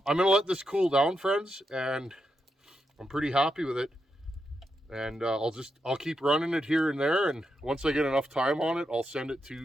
going to let this cool down, friends, and I'm pretty happy with it. And I'll keep running it here and there, and once I get enough time on it, I'll send it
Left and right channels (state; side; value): normal; both; correlation 0.84